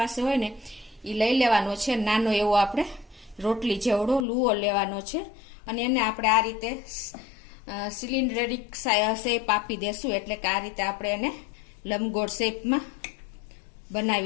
હોય ને એ લઈ લેવાનો છે. નાનો એવો આપણે રોટલી જેવડો લુવો લેવાનો છે. અને એને આપણે આ રીતે સિલિન્ડરિક શેપ આપી દેશું. એટલે કે આ રીતે આપણે એને લંબગોળ શેપમાં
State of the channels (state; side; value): drops out; right; at 4.2 s